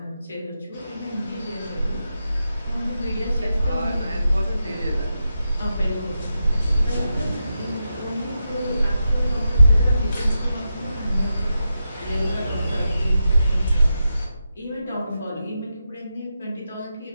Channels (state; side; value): inverted; both; correlation -0.87